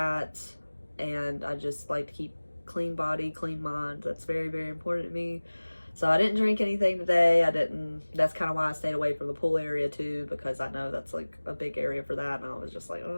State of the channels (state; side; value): inverted; both; correlation -1.00